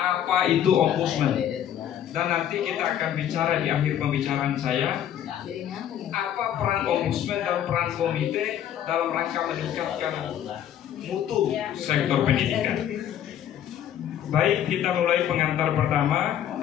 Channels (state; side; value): quieter; right; 10.5 dB